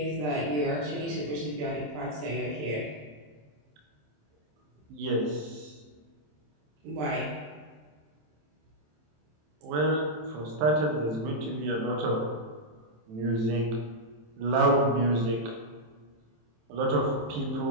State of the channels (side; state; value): left; late; 27 ms